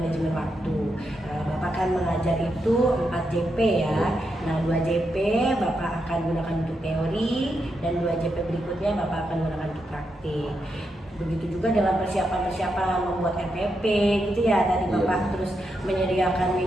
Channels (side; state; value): both; normal; correlation 0.84